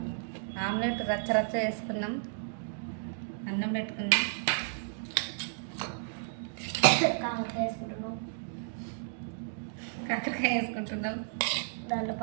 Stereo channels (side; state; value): left; silent; digital silence